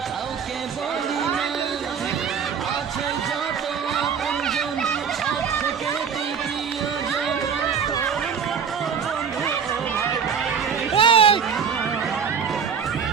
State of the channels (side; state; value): left; quieter; 6.9 dB